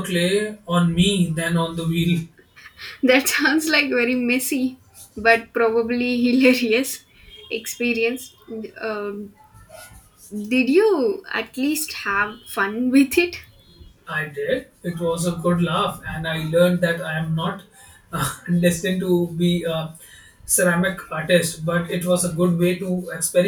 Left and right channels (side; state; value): both; identical; correlation 1.00